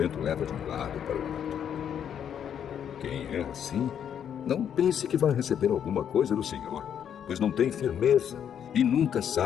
leva de um lado para o outro. Quem é assim, não pense que vai receber alguma coisa do Senhor, pois não tem firmeza e nunca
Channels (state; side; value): quieter; right; 8.8 dB